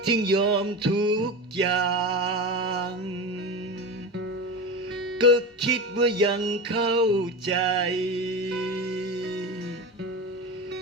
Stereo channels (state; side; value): normal; both; correlation 0.24